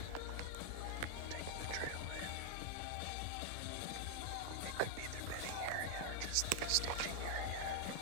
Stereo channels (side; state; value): both; different; correlation 0.00